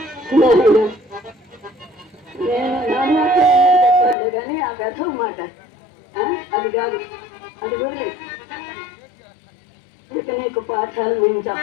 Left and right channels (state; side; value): drops out; right; at 4.2 s